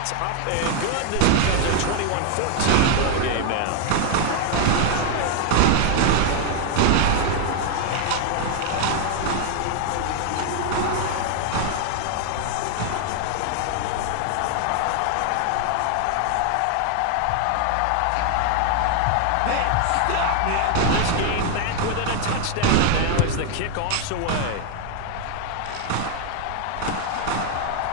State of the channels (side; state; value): both; different; correlation 0.00